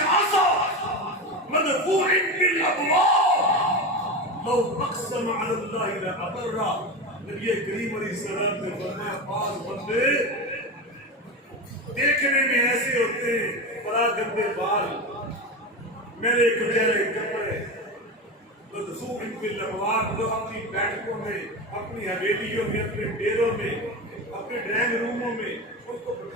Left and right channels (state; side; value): normal; both; correlation 0.21